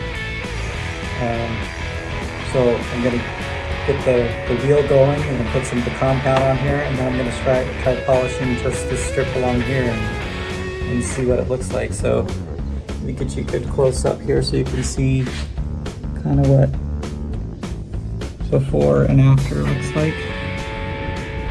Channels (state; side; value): identical; both; correlation 1.00